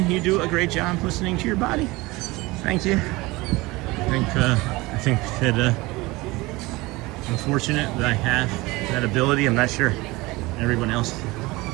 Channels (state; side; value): quieter; left; 21.8 dB